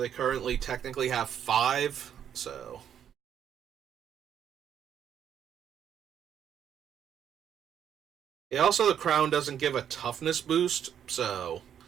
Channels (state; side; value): quieter; left; 9.2 dB